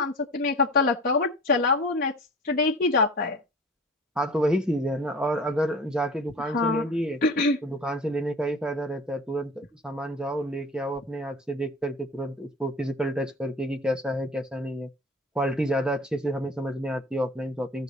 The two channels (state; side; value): normal; both; correlation 0.39